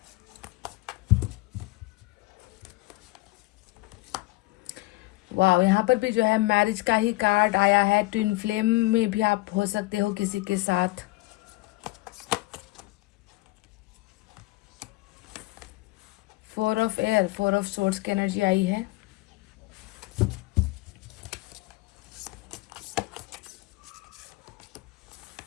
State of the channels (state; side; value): quieter; right; 20.8 dB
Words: वाह, यहाँ पर भी जो है मैरिज का ही कार्ड आया है। ट्विन फ्लेम में भी आप हो सकते हो किसी के साथ। Four of air, 4 of swords की एनर्जी आई है।